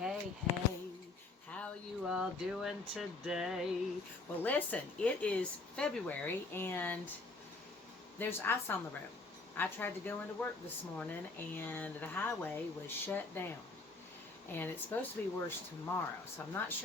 hey. How you all doing today? Well, listen, it is February and there's ice on the road. I tried to go into work this morning and the highway was shut down. And it's supposed to be worse tomorrow. So I'm not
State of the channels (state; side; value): quieter; right; 3.5 dB